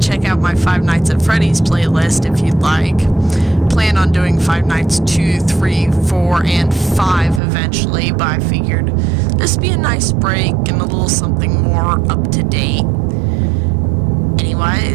Check out my Five Nights at Freddy's playlist if you'd like. Plan on doing Five Nights 2, 3, 4, and 5 eventually, but I figured this would be a nice break and a little something more up to date.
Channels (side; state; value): left; drops out; at 7.4 s